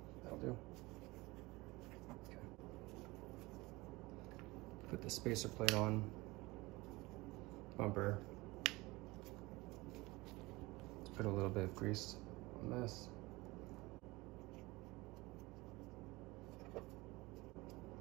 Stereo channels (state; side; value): quieter; left; 22.1 dB